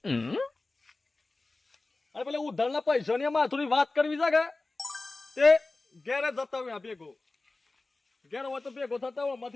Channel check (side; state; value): right; quieter; 3.3 dB